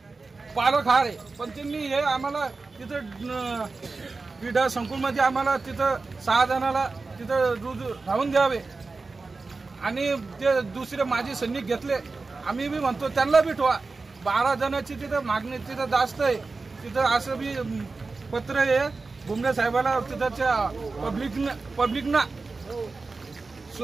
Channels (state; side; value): quieter; left; 3.9 dB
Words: पालक हार आहे, पण त्यांनी हे आम्हाला तिथं क्रीडा संकुलमध्ये आम्हाला तिथं 6 जणाला तिथं राहून द्यावे आणि ते दुसरे माजी सैनिक घेतले. आम्ही बी म्हणतो त्यांना बी ठेवा. 12 जणांची तिथं मागणी तिथं जास्त आहे. तिथं असं बी पत्र आहे भुमरे साहेबाला, तिथच्या पब्लिकना